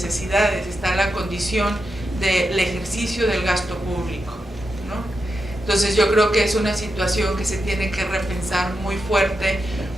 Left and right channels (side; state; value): both; normal; correlation 0.87